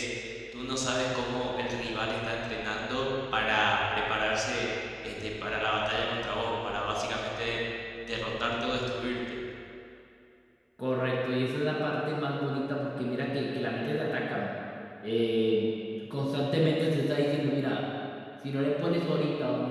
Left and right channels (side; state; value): both; identical; correlation 1.00